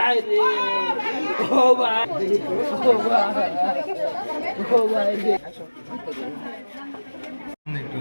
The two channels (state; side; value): inverted; both; correlation -1.00